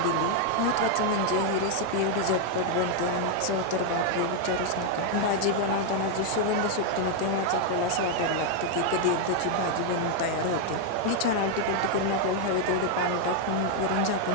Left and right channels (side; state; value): both; different; correlation 0.00